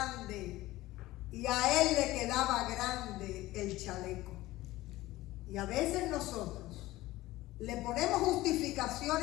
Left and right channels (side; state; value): right; quieter; 17.5 dB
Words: y a él le quedaba grande el chaleco. Y a veces nosotros le ponemos